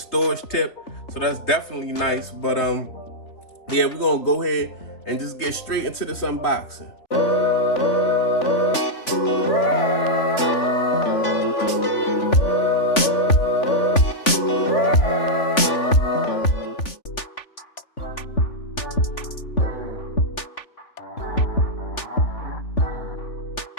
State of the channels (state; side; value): late; right; 3.4 ms